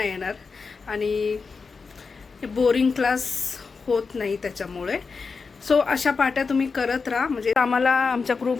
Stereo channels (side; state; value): right; quieter; 4.8 dB